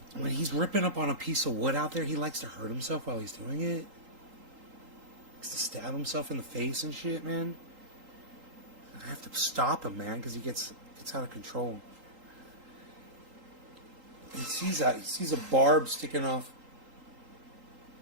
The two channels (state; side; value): late; left; 3.8 ms